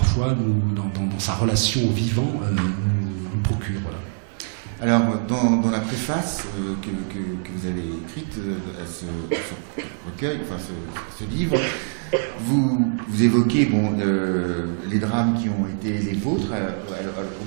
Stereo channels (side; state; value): left; silent; digital silence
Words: dans sa relation au vivant, nous procure. Voilà. Alors, dans la préface que vous avez écrite à ce recueil, enfin ce livre, vous évoquez les drames qui ont été les vôtres